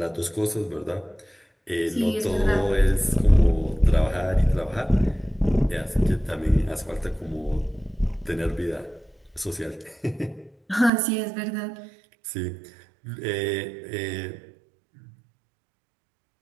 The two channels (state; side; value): drops out; left; at 10.9 s